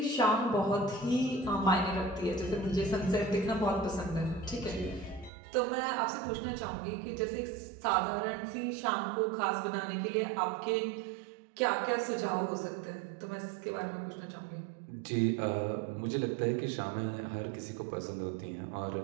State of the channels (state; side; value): drops out; left; at 5.3 s